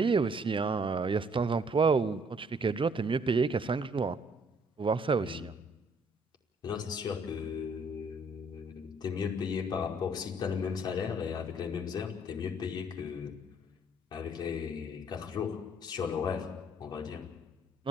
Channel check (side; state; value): both; normal; correlation 0.63